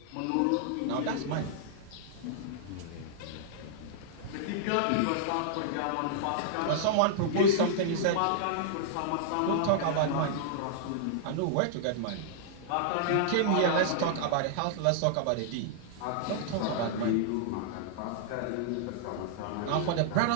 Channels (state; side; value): different; both; correlation -0.01